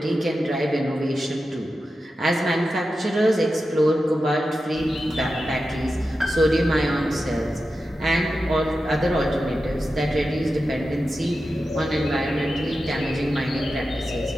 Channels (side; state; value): both; normal; correlation 0.91